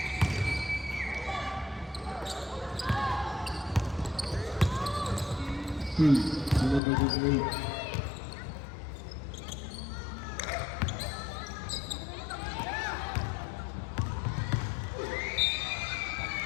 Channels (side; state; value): right; drops out; at 6.8 s